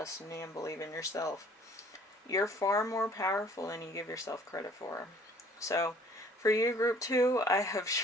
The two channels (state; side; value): normal; both; correlation 0.55